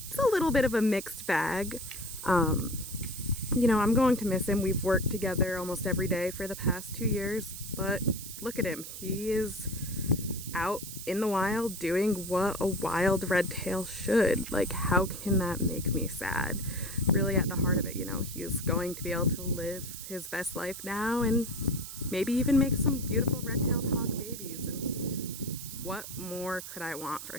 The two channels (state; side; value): noise; right; hiss, 10 dB below the sound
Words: it's a little bit of a mixed bag. You know, I'm going to miss him. We've worked together almost every day for the past 2 years, but look at him. He is out in the wild doing what a wild red tail should. Like, how can that make me sad? Really at the heart of it, you know, he is going to be able to live his best life now and maybe even make some beautiful red-tailed hog babies. And what more could I want for